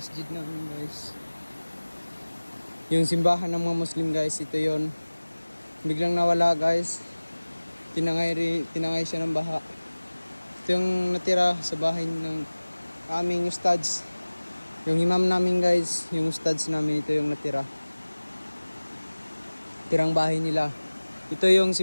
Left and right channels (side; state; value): both; inverted; correlation -1.00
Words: namin guys. Yung simbahan ng mga Muslim guys. Ito yun. Biglang nawala guys. Tinangay siya ng baha. Ito yung natira sa bahay ng aming ustads. Yung imam namin guys. Yung ustads namin. Ito yung natira. Tirang bahay nila. Ito yung